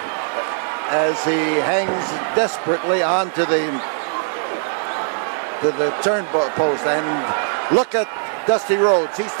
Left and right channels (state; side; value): silent; left; digital silence